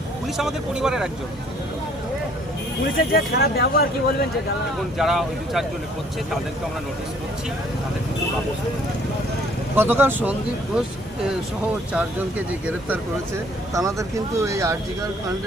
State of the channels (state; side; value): normal; both; correlation 0.60